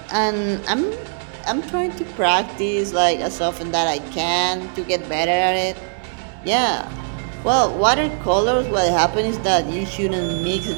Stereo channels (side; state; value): left; silent; digital silence